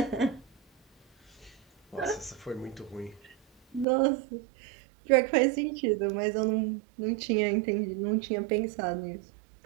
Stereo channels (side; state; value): left; drops out; at 3.9 s